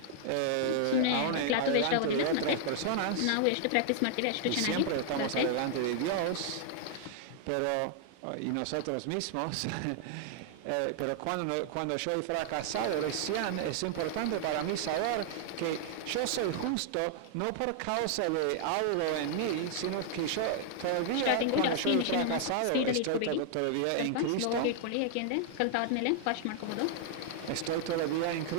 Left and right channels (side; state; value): both; different; correlation 0.00